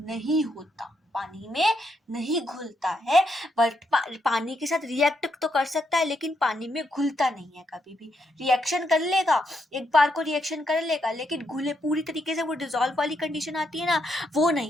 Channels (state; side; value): normal; both; correlation 0.79